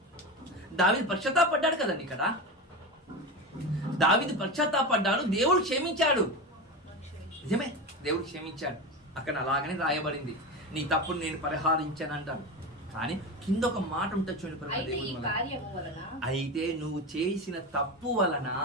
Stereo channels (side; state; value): both; normal; correlation 0.22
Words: దావీదు పశ్చాత్తాపడ్డాడు కదండి. ఇక్కడ దావీదు పశ్చాత్తాపడ్డాడు, దేవుడు క్షమించాడు. నిజమే, దేవుడు క్షమించాడు. అక్కడ అలాగనే రాయబడింది, నీ తప్పును నేను పరిహారించాను అంటాడు. కానీ కింద ఒక మాట ఉంటుంది చూడండి, అయితే నువ్వు చేసిన తప్పు వలన